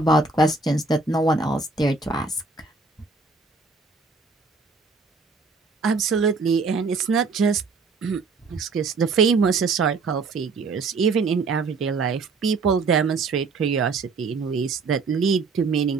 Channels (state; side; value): quieter; left; 4.2 dB